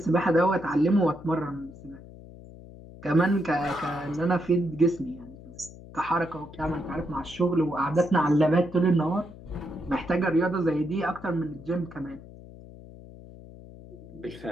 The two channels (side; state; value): left; noise; hum, 17 dB below the sound